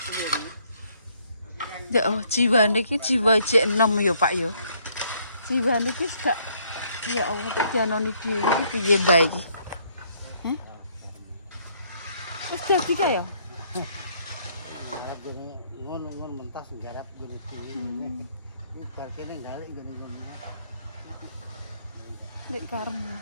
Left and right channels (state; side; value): inverted; both; correlation -0.67